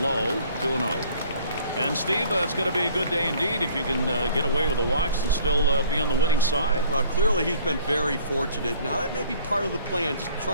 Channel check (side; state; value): both; inverted; correlation -0.54